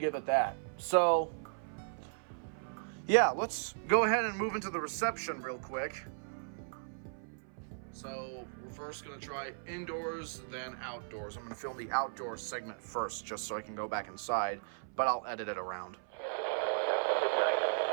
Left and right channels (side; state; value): left; silent; 54 dB below the other